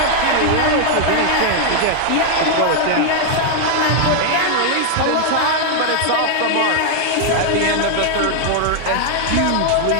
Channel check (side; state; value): both; different; correlation 0.00